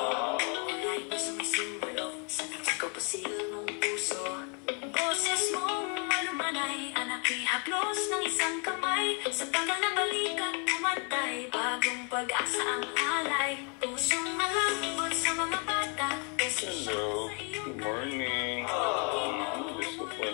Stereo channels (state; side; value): quieter; right; 37.0 dB